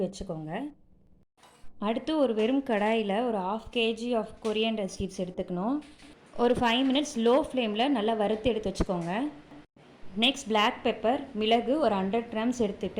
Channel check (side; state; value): both; identical; correlation 1.00